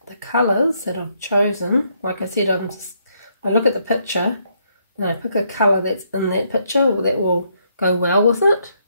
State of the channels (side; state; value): both; inverted; correlation -0.73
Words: the colours that I've chosen, like I said, I look at the picture and I pick a colour that's in that picture, or that will go well with it.